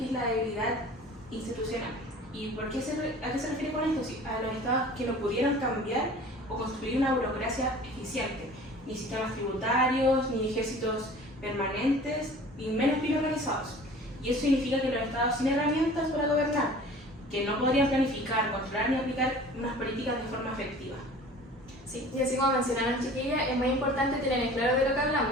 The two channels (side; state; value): both; normal; correlation 0.45